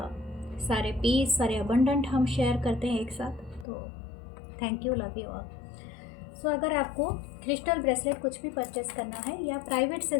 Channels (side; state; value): right; drops out; at 3.7 s